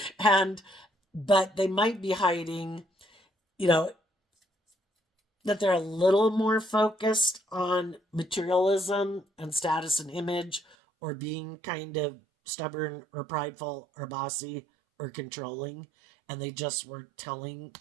But they might be hiding, that they're a little more focused on materialism and status and image, or being kind of stubborn or prideful or bossy or controlling, and they just weren't telling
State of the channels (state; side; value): drops out; left; at 10.8 s